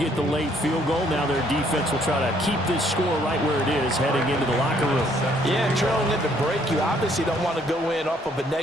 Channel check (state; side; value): normal; both; correlation 0.65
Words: the late field goal. Now their defense will try to keep this score right where it is heading into the locker room. Yeah, trailing at the break, you obviously don't want to go in off of a